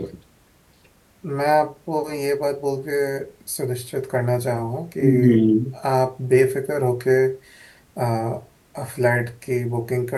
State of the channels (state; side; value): identical; both; correlation 1.00